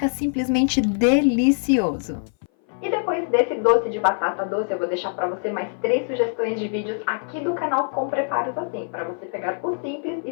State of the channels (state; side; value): silent; right; 59 dB below the other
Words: simplesmente delicioso. E depois desse doce de batata doce, eu vou deixar para você mais 3 sugestões de vídeos aqui do canal com preparos assim, para você pegar o simples